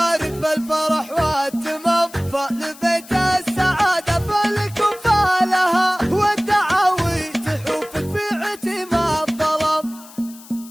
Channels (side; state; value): left; noise; hiss, 20 dB below the sound